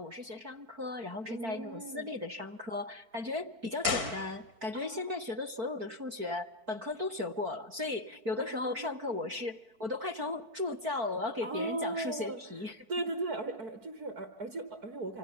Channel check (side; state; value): left; late; 4.5 ms